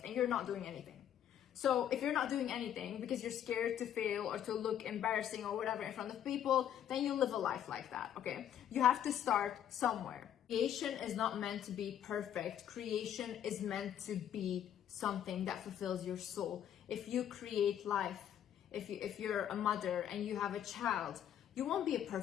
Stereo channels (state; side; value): quieter; right; 10.2 dB